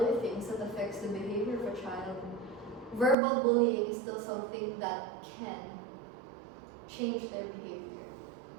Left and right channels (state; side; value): drops out; left; at 3.2 s